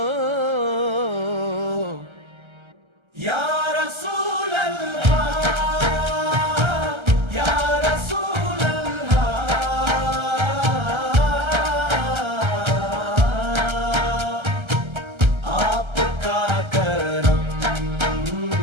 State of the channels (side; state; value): left; late; 1.3 ms